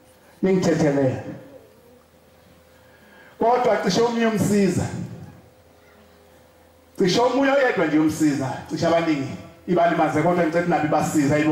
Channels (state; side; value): identical; both; correlation 1.00